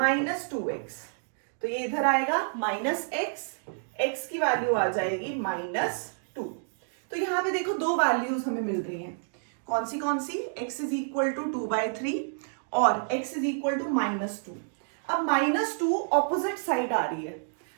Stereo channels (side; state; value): left; silent; digital silence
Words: तो ये इधर आएगा -x, x की वैल्यू आ जाएगी -2। तो यहाँ पे देखो दो वैल्यूज हमें मिल रही हैं, कौन सी x इज इक्वल टू 2/3 और x इज इक्वल टू -2। अब -2 ऑपोजिट साइड आ रही है,